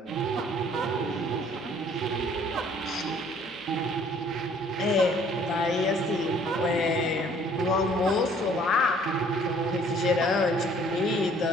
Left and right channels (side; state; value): both; normal; correlation 0.57